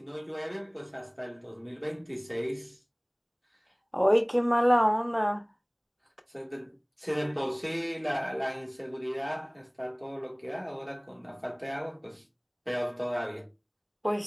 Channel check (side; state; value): both; identical; correlation 1.00